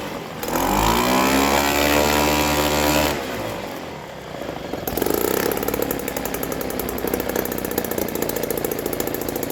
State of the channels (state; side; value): identical; both; correlation 1.00